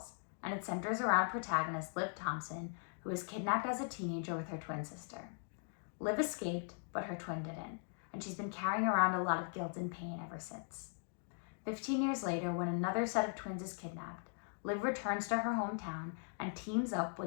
and it centers around protagonist Liv Thompson, who was kidnapped as a teenager with her twin sister. Liv escaped, but her twin didn't, and she's been carrying around a lot of guilt and pain ever since. 15 years later, when another set of twins is kidnapped, Liv returns to her hometown and teams up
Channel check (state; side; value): silent; right; 51 dB below the other